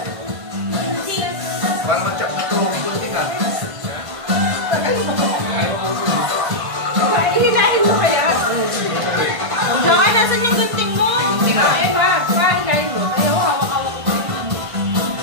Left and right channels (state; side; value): late; left; 1.5 ms